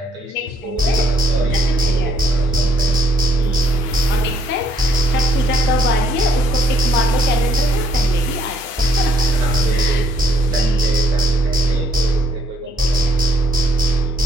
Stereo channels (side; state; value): both; normal; correlation 0.66